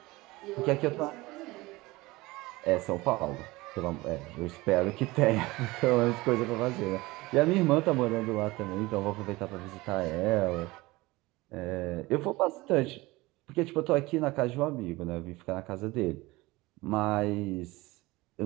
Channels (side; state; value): left; quieter; 20.9 dB